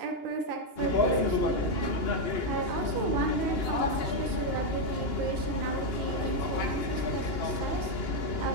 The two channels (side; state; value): right; late; 2.8 ms